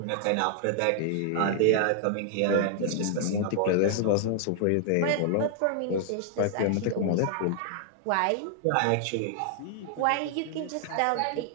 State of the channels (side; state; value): both; different; correlation 0.00